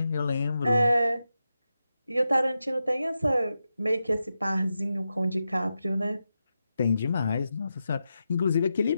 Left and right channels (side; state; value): both; inverted; correlation -0.89